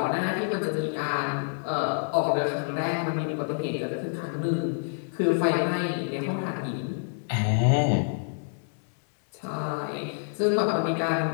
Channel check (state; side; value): silent; right; digital silence